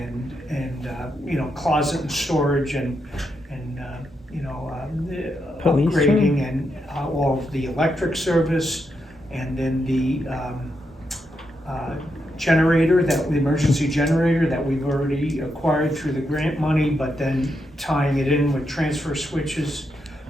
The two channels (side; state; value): both; normal; correlation 0.83